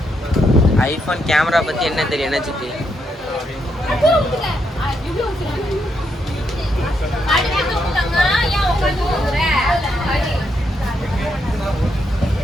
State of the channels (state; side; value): normal; both; correlation 0.79